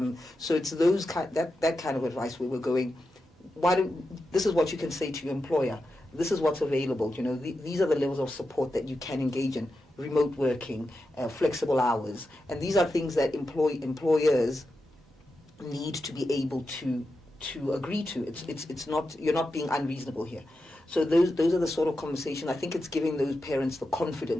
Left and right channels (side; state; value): both; normal; correlation 0.89